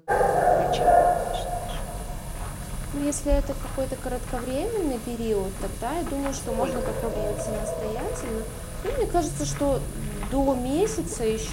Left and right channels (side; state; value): both; identical; correlation 1.00